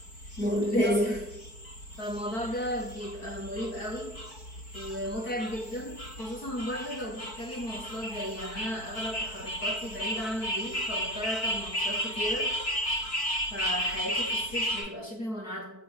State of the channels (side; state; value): right; late; 4.5 ms